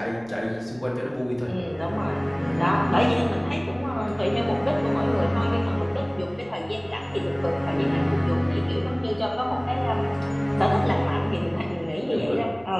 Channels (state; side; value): noise; right; hum, 28 dB below the sound